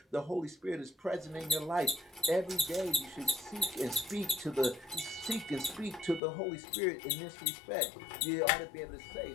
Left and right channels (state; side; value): drops out; right; at 6.2 s